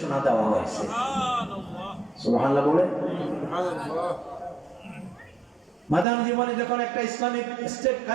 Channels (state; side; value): drops out; left; at 6.1 s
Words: দেওয়া হয়েছে। সুবহানাল্লাহ বলে। মাদানী জীবনে যখন একটা ইসলামিক স্টেট